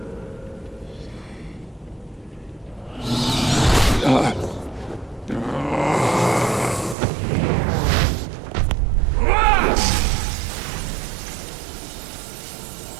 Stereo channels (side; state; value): left; drops out; at 7.0 s